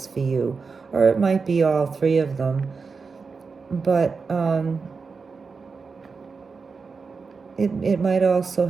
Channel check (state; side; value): quieter; left; 4.9 dB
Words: for you. Or it might be all three of them. But it might also